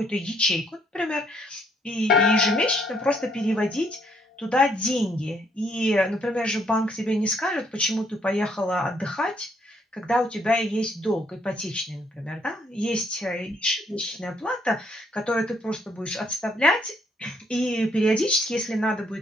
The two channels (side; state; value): both; normal; correlation 0.69